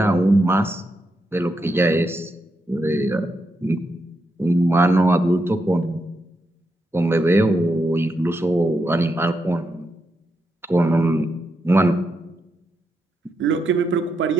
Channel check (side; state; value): both; normal; correlation 0.83